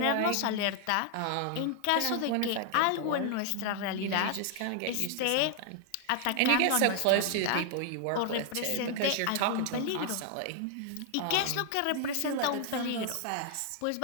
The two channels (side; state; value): both; different; correlation 0.00